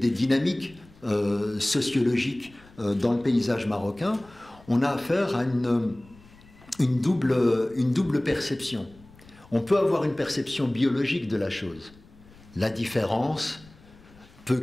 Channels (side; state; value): left; noise; rumble, 25 dB below the sound